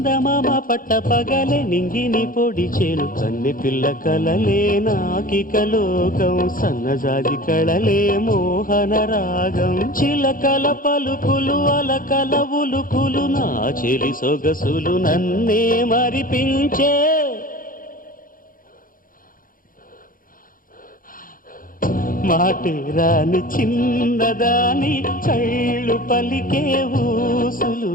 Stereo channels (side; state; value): right; late; 0.40 ms